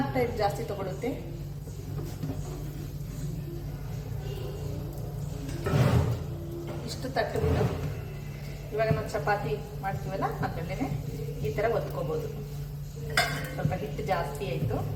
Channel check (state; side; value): identical; both; correlation 1.00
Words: ಟೈಮ್ ಜಾಸ್ತಿ ತಗೊಳುತ್ತೆ. ಇಷ್ಟು ತಟ್ಟಬಿಟ್ಟು ಇವಾಗ ನಾವು ಚಪಾತಿ ಮಾಡ್ತೀವಲ್ಲ ಅದ್ರಲ್ಲೇನೆ ಈ ತರ ಒತ್ಕೋಬಹುದು. ಸ್ವಲ್ಪ ಹಿಟ್ಟು ಜಾಸ್ತಿ ಆಯ್ತು,